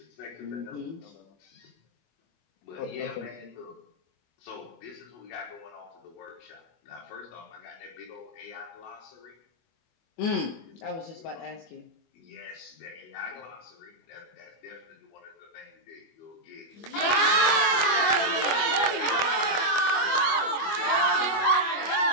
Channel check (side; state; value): right; late; 24 ms